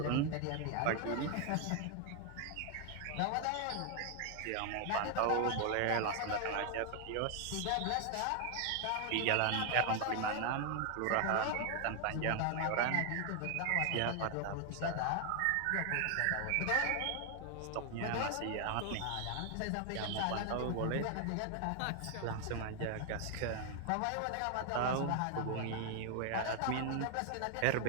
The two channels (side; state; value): both; different; correlation 0.00